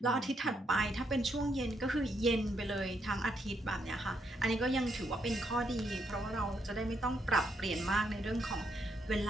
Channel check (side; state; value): both; normal; correlation 0.77